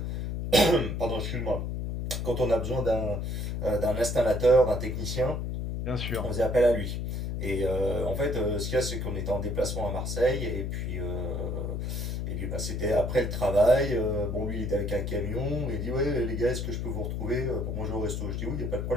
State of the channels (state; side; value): noise; left; hum, 2 dB below the sound